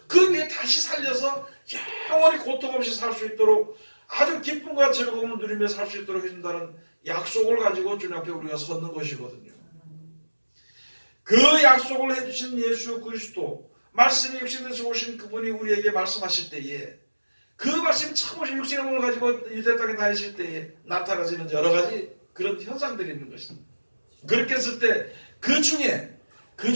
그 위에 다시 살려서 영원히 고통 없이 살 수 있도록 아주 기쁨과 즐거움을 누리며 살 수 있도록 해준다는 약속을 가지고 주님 앞에 우리가 섰는 것이거든요. 그 약속을 해주신 예수 그리스도 말씀이 육신에서 오신 그분이 우리에게 말씀하실 때에 그 말씀이 처음 오신 육신의 몸을 가지고 유대 땅에 다니실 때에 나타나지는 여러 가지 그런 현상들이 있는 것입니다. 그렇게 했을 때 그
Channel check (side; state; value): both; inverted; correlation -1.00